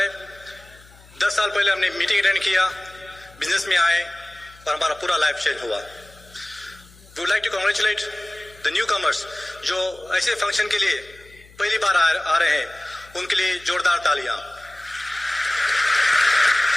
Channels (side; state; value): left; noise; hum, 24 dB below the sound